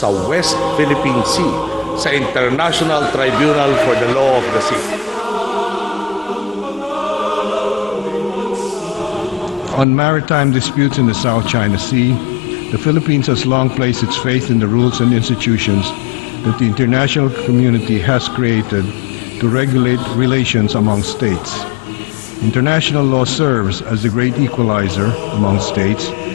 West Philippine Sea sa International Tribunal for the Law of the Sea. On maritime disputes in the South China Sea, the Philippines has long placed its faith in the rules and institutions that the international community has created to regulate relations among states. International law serves as the great equalizer among states,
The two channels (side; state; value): right; drops out; at 9.9 s